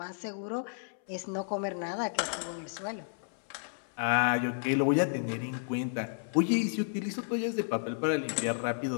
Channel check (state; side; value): silent; right; 56 dB below the other